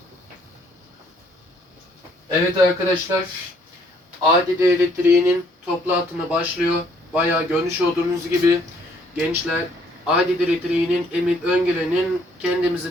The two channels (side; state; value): both; normal; correlation 0.64